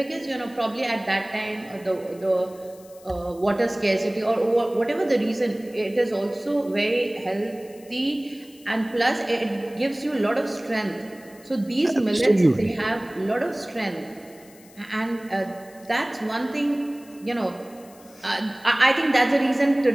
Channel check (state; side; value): noise; left; hiss, 25 dB below the sound